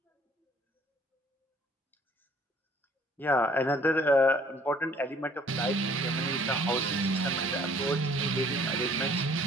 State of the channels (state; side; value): normal; both; correlation 0.58